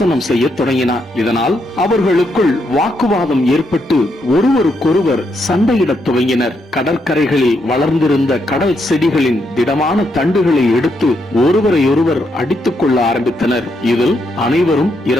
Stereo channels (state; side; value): normal; both; correlation 0.78